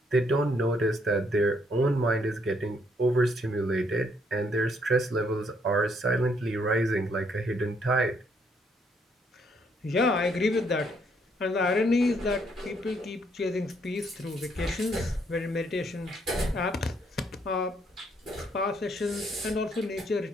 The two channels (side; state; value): both; normal; correlation 0.70